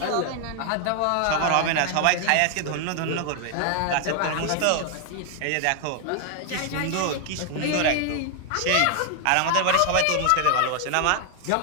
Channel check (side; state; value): both; different; correlation 0.00